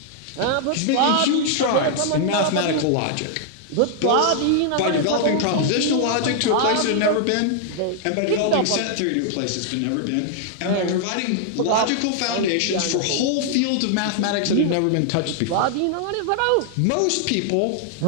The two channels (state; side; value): different; both; correlation -0.01